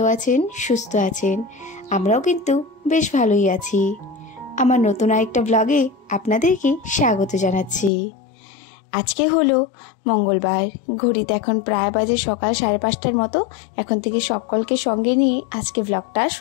আছেন, সুস্থ আছেন। আমরাও কিন্তু বেশ ভালোই আছি। আমার নতুন আরেকটা ব্লগে আপনাদেরকে স্বাগত জানাচ্ছি। আজকে হলো মঙ্গলবার, ঘড়িতে এখন প্রায় বাজে সকাল 5:30টার মতো। এখন থেকে সকলকে সঙ্গে নিয়ে আজকে ব্লগটা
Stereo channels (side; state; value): right; drops out; at 7.9 s